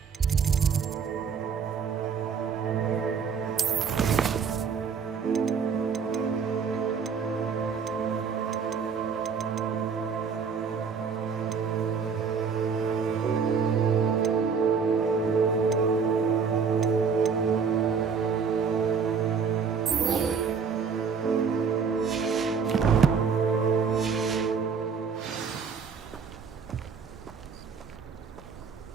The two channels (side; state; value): left; quieter; 6.0 dB